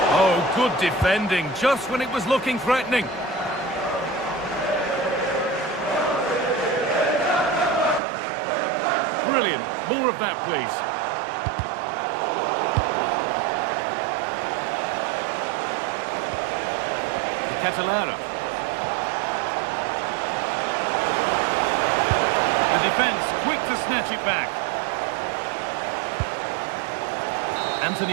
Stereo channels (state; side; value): drops out; left; at 8.0 s